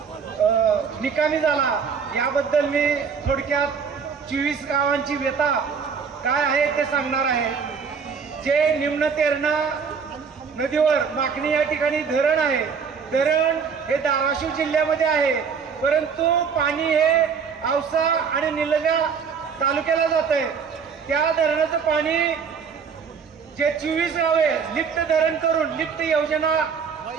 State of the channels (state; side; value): quieter; left; 6.1 dB